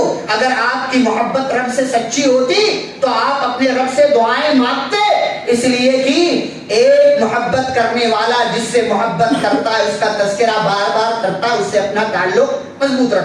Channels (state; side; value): identical; both; correlation 1.00